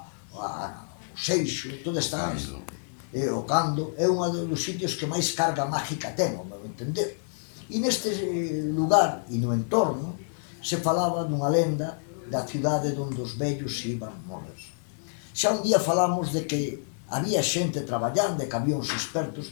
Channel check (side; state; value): right; silent; digital silence